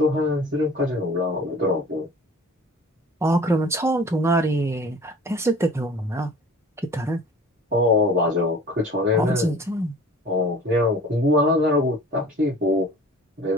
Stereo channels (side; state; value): both; normal; correlation 0.45